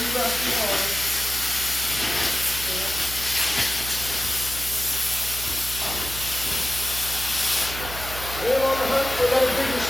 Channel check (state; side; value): noise; right; hum, 10 dB below the sound